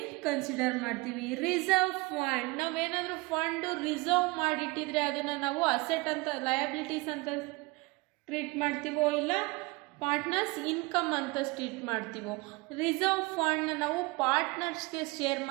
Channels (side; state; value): left; quieter; 24.3 dB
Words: ಕನ್ಸಿಡರ್ ಮಾಡ್ತೀವಿ. ರಿಸರ್ವ್ ಫಂಡ್, ನಾವೇನಾದರೂ ಫಂಡು ರಿಸರ್ವ್ ಮಾಡಿಟ್ಟಿದ್ರೆ ಅದನ್ನು ನಾವು ಅಸೆಟ್ ಅಂತ, ಲಯಬಿಲಿಟೀಸ್ ಅಂತ ಟ್ರೀಟ್ ಮಾಡ್ತೀವೋ ಇಲ್ಲ ಪಾರ್ಟ್ನರ್ಸ್ ಇನ್ಕಮ್ ಅಂತ ಟ್ರೀಟ್ ಮಾಡ್ತೀವೋ. ರಿಸರ್ವ್ ಫಂಡ್ನ ನಾವು ಪಾರ್ಟ್ನರ್ಸ್ಗೆ ಶೇರ್